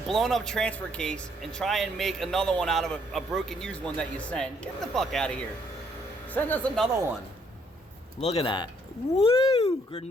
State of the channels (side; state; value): both; normal; correlation 0.68